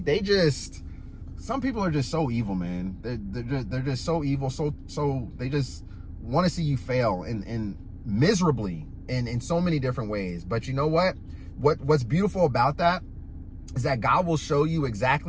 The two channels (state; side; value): identical; both; correlation 1.00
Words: they just some people are just so evil, man. They're just so evil. So they just want to see you fail and miserably in so many different ways. But you know what? What's beautiful about that is that God will show you